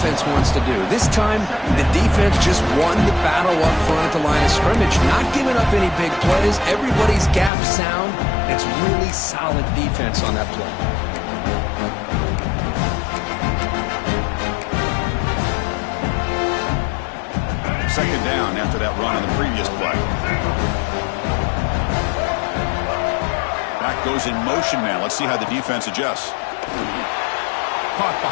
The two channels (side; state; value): right; drops out; at 7.5 s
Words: wants to do. This time, the defense just won the battle up front at the line of scrimmage, not giving up any big plays. Everybody's gap sound. It's really solid defense on that play. Second down after that run on the previous play. Back goes in motion now. Let's see how the defense adjusts. Caught